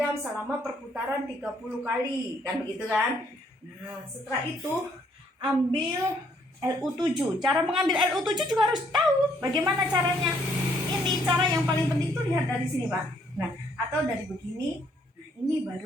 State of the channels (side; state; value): both; normal; correlation 0.68